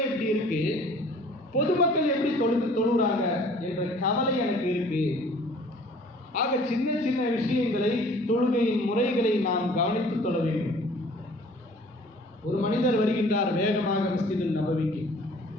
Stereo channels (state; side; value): normal; both; correlation 0.52